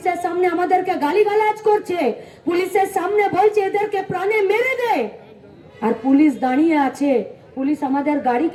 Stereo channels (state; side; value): identical; both; correlation 1.00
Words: সামনে আমাদেরকে গালিগালাজ করছে, পুলিশের সামনে বলছে এদেরকে প্রাণে মেরে দে। আর পুলিশ দাঁড়িয়ে আছে, পুলিশ আমাদের